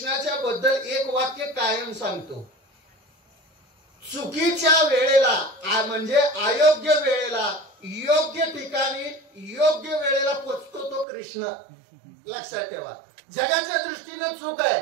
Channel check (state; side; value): drops out; left; at 11.1 s